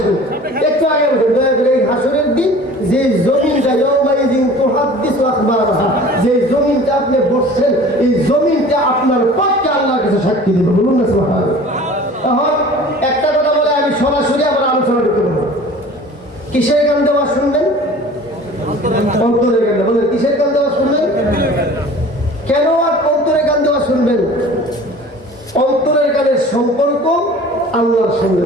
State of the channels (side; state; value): both; normal; correlation 0.44